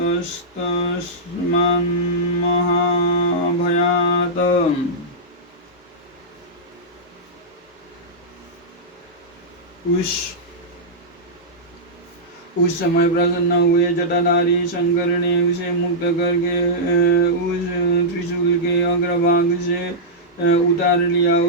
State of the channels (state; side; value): normal; both; correlation -0.11